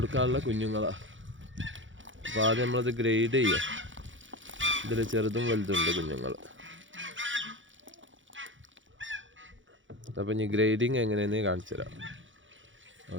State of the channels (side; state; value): left; late; 0.56 ms